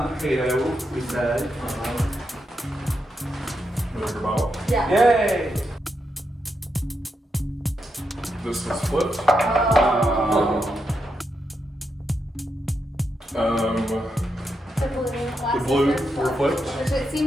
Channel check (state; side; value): normal; both; correlation 0.84